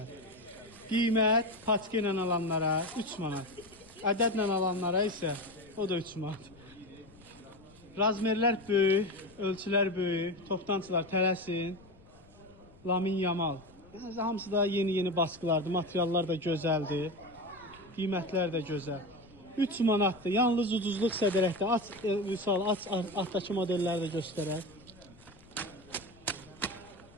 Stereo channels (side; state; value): left; noise; rumble, 25 dB below the sound